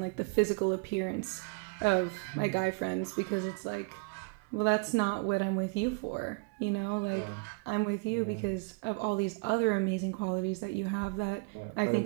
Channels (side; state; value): left; quieter; 32.4 dB